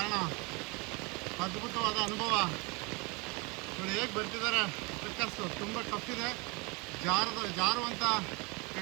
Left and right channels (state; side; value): quieter; left; 28.6 dB